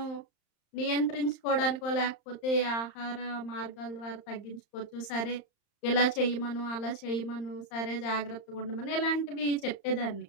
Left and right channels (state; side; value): late; right; 35 ms